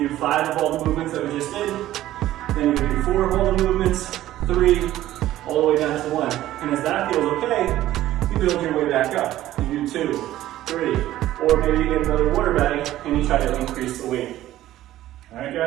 do 5 of all the movements that we just did. Then you do 4 of all the movements, 3, all the way down to 1. And as that feels okay, you build your way back up. You do 2, 3, or maybe you get another water bag and you try to increase the weight. All right,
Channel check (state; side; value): quieter; left; 14.1 dB